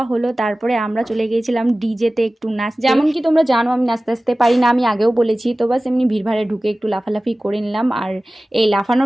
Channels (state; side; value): normal; both; correlation 0.97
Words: হলো। তারপরে আমরা চলে গিয়েছিলাম ডিজেতে একটু নাচ। যেমন কি তোমরা জানো আমি নাচতে আসতে পারি না, আমি আগেও বলেছি। তো বাস এমনি ভিড়ভাড়ে ঢুকে একটু লাফালাফি করে নিলাম। আর এই